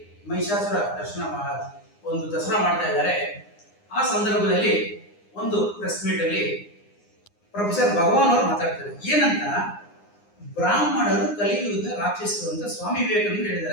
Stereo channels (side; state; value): right; late; 9.7 ms